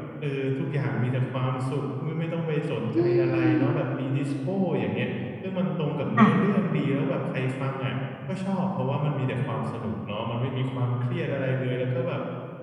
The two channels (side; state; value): both; identical; correlation 1.00